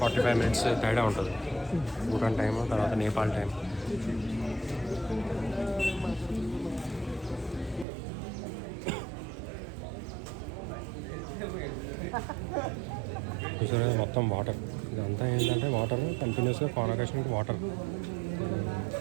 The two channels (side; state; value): left; drops out; at 7.9 s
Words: మినిట్స్ తేడా ఉంటుంది. భూటాన్ టైం తర్వాత నేపాల్ టైం. చూసారా మొత్తం వాటర్. ఇదంతా ఏంటంటే వాటర్ కంటిన్యూస్గా కాన్వకేషన్కి వాటర్